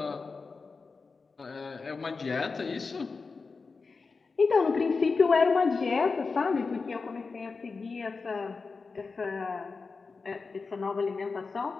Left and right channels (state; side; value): quieter; right; 4.5 dB